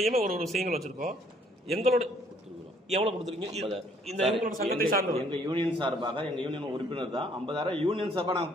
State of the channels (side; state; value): both; normal; correlation 0.63